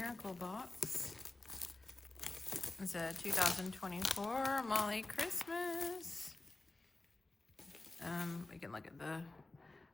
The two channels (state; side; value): quieter; right; 3.1 dB